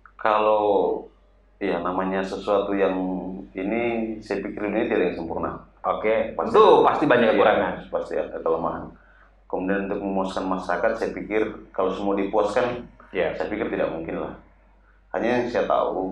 Kalau ya namanya sesuatu yang ini, saya pikir ini tidak yang sempurna. Oke, tentu pasti banyak kekurangan, pasti ada kelemahan. Kemudian untuk memuaskan masyarakat, saya pikir kalau semua dipuaskan, saya pikir tidak mungkin lah. Hanya yang saya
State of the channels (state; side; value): identical; both; correlation 1.00